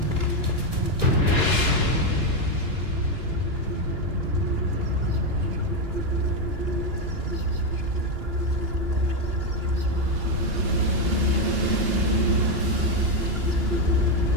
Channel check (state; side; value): late; left; 2.9 ms